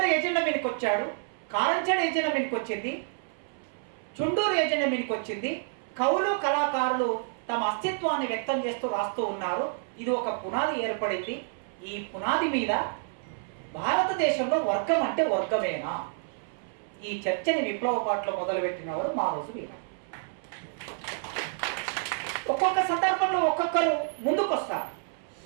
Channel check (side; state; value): left; silent; 59 dB below the other